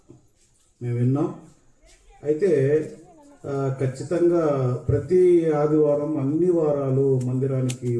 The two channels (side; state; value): both; identical; correlation 1.00